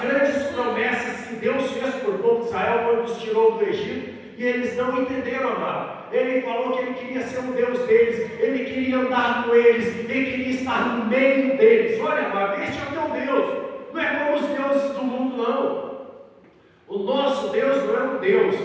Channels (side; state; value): both; identical; correlation 1.00